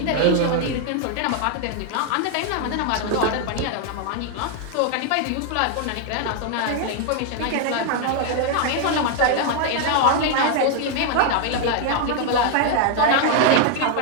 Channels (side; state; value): both; different; correlation 0.00